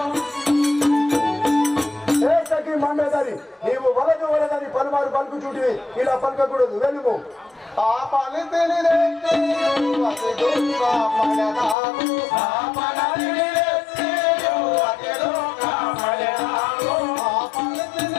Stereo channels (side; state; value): right; drops out; at 11.8 s